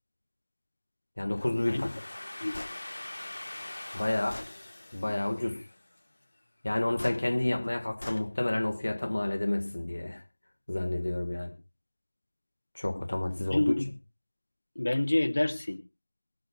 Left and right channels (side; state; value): both; inverted; correlation -1.00